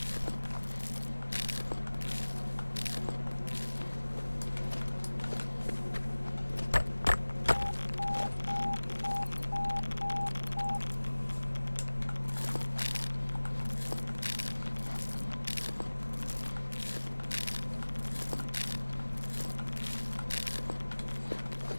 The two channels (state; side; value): inverted; both; correlation -1.00